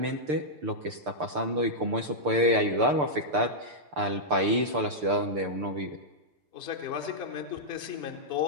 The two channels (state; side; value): late; left; 6.8 ms